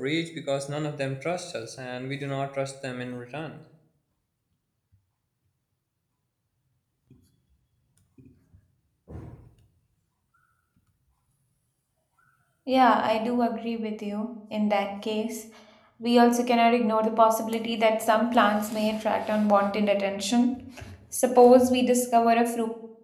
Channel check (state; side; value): identical; both; correlation 1.00